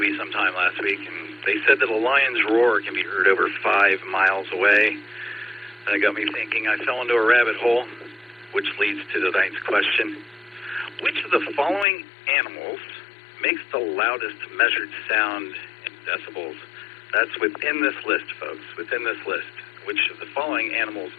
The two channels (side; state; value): right; drops out; at 11.9 s